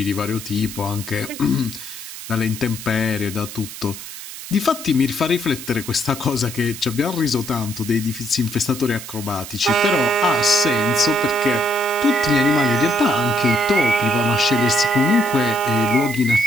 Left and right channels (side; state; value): right; noise; hiss, 11 dB below the sound